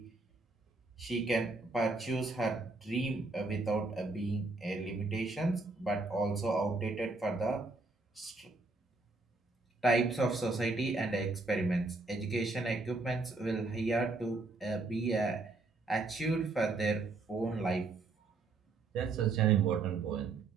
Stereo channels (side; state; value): left; quieter; 3.5 dB